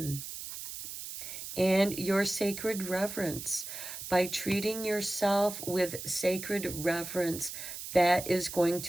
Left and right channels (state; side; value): noise; right; hiss, 9 dB below the sound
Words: And your sacred reverence. By treating yourself with sacred reverence, that is going